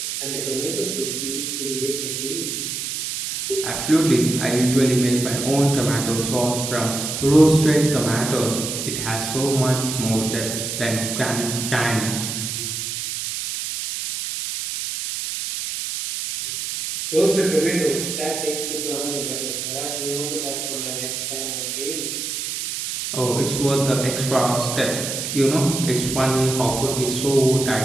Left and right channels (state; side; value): noise; right; hiss, 4 dB below the sound